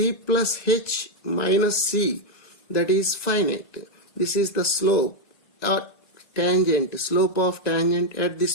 plus h minus c, that is finite. This is the slope or tangent, slope of tangent at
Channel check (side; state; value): right; late; 1.7 ms